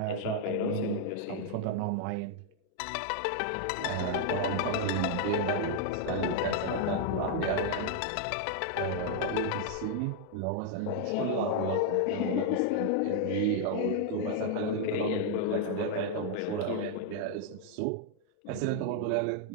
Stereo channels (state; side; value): different; both; correlation 0.00